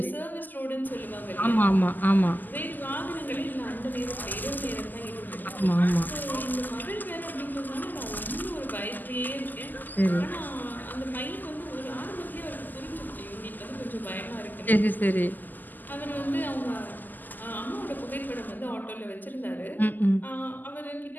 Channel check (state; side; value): late; right; 0.086 ms